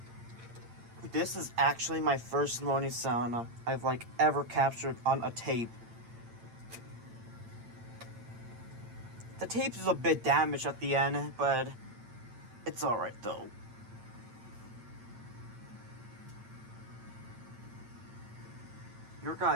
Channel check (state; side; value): late; left; 8.8 ms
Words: This is actually my first moaning sound I've ever captured on a tape. The tape is a bit damaged at the end, but it's alright though.